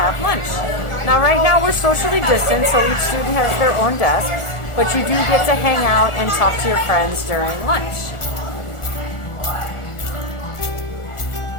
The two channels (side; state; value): right; late; 1.4 ms